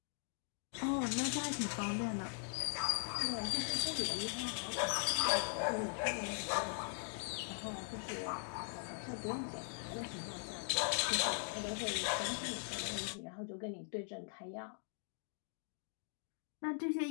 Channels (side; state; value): right; silent; digital silence